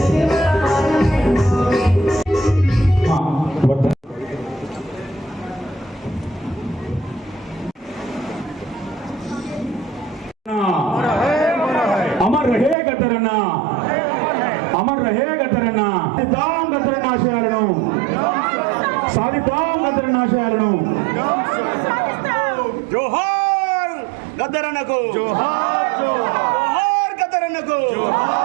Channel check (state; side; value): drops out; left; at 12.8 s